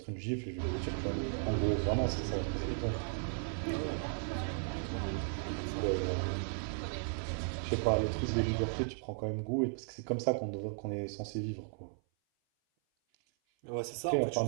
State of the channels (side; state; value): left; silent; 54 dB below the other